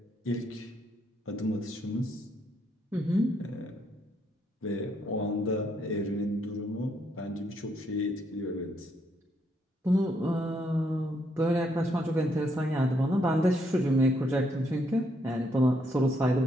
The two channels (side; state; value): both; normal; correlation 0.74